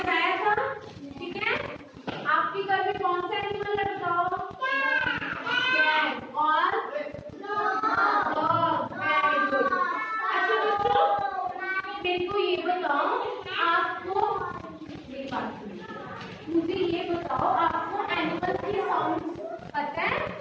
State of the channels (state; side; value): identical; both; correlation 1.00